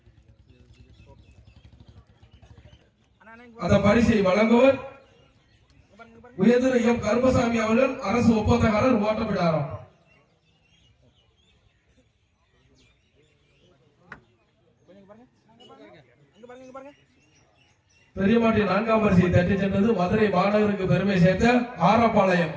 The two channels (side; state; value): both; identical; correlation 1.00